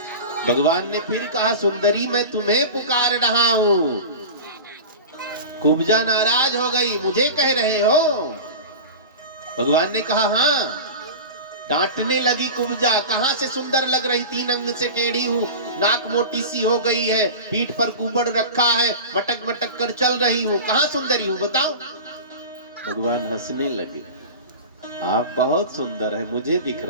भगवान ने फिर कहा सुंदरी मैं तुम्हें पुकार रहा हूं। कुब्जा नाराज हो गई, मुझे कह रहे हो? भगवान ने कहा हाँ। डांटने लगी कुब्जा, कहां से सुंदर लग रही, 3 अंग से टेढ़ी हूँ, नाक मोटी सी हो गई है, पीठ पर कुबड़ रखा है, मटक मटक कर चल रही हूँ, कहां सुंदरी हूँ बताओ? भगवान हंसने लगे, आप बहुत सुंदर है, मुझे दिख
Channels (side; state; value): both; inverted; correlation -0.31